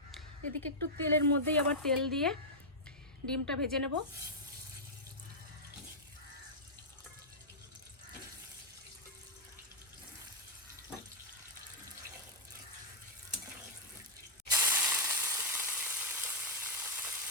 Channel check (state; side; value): normal; both; correlation -0.07